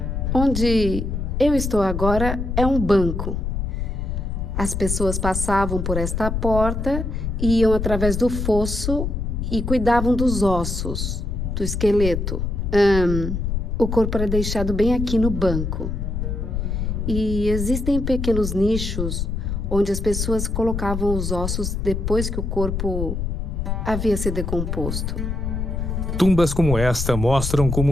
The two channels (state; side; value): noise; left; rumble, 2 dB below the sound